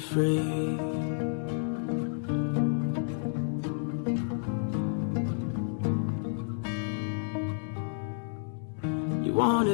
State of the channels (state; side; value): silent; right; digital silence